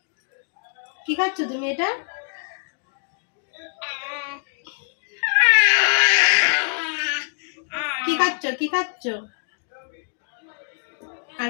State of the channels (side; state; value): right; silent; digital silence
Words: কি খাচ্ছ তুমি এটা? কি খাচ্ছ? কি খাচ্ছ? আর